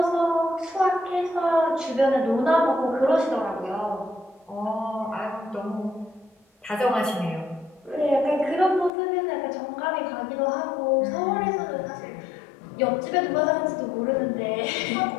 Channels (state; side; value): drops out; right; at 8.9 s